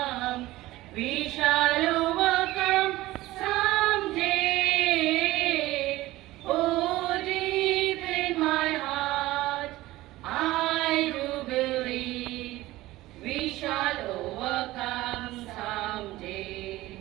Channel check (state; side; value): quieter; left; 17.5 dB